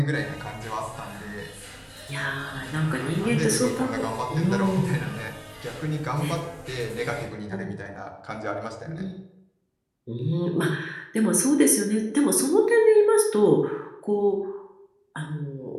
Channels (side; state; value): both; identical; correlation 1.00